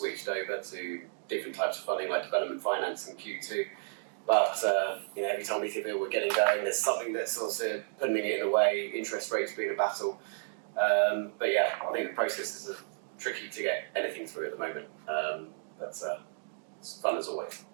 over to different types of funding like development finance in Q2. But every time we think we're getting going, there's something that's also putting it in a way, interest rates being a battle. But yeah, I think the processes are tricky to get anything through at the moment. But it's fun as always.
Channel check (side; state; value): left; silent; digital silence